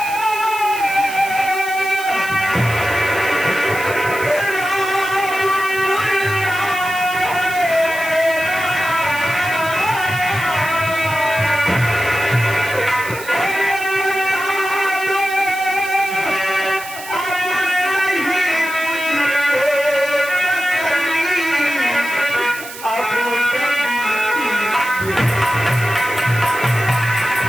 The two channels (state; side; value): noise; right; hiss, 13 dB below the sound